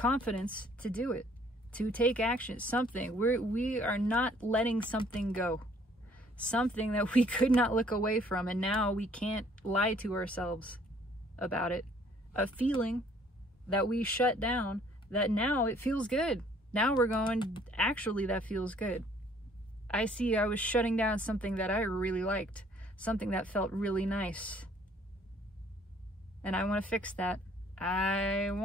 to do it, to take action. Something we are not letting something go, something that we could not look away from, and now we can't lie to ourselves about it. A feeling that we shut down, that now it feels good. Now we're going, actually that feels good. I was shutting down something that I really liked, something that felt really nice. And I want to fix that. I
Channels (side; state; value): both; normal; correlation 0.60